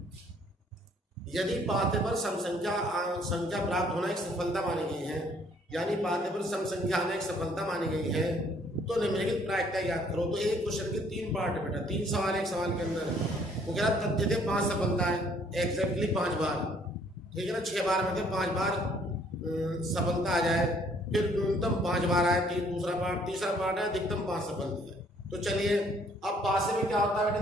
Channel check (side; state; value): both; normal; correlation 0.62